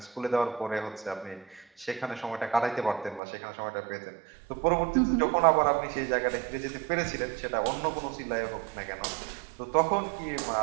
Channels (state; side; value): drops out; left; at 3.2 s